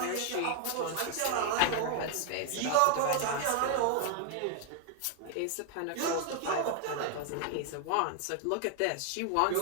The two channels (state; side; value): different; both; correlation 0.00